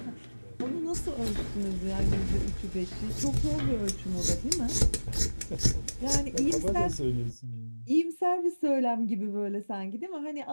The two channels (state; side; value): inverted; both; correlation -1.00